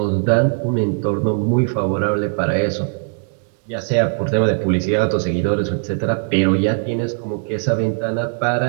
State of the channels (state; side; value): silent; left; 56 dB below the other